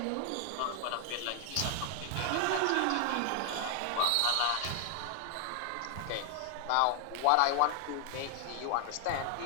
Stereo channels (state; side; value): different; both; correlation 0.00